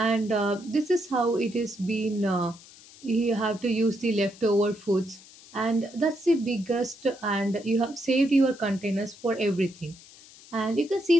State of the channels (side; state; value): left; noise; hiss, 22 dB below the sound